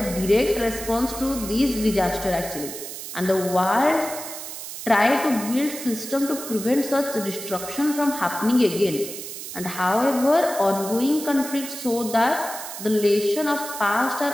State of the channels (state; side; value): noise; right; hiss, 9 dB below the sound